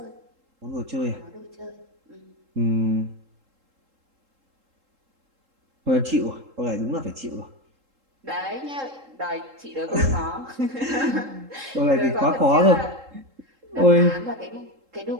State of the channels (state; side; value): late; left; 3.7 ms